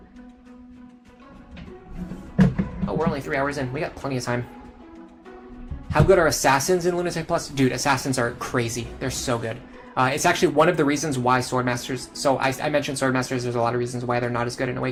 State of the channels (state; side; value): identical; both; correlation 1.00